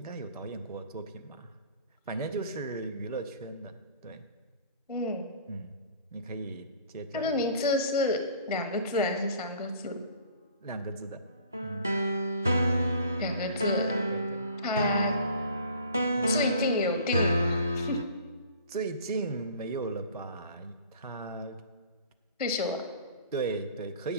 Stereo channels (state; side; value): inverted; both; correlation -0.49